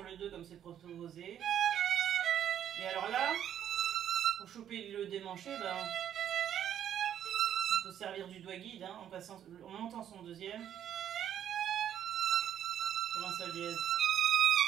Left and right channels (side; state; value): left; quieter; 10.1 dB